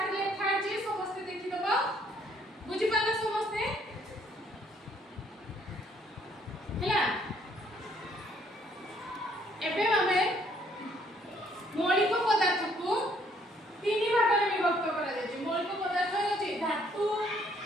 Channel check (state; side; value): normal; both; correlation 0.65